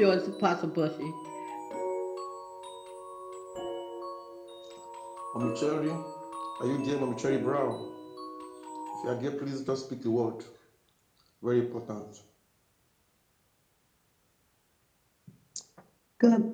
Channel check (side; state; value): both; identical; correlation 1.00